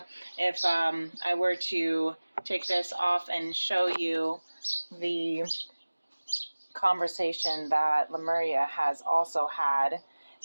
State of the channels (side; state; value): both; inverted; correlation -1.00